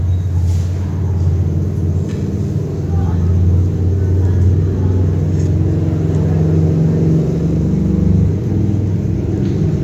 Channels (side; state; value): both; identical; correlation 1.00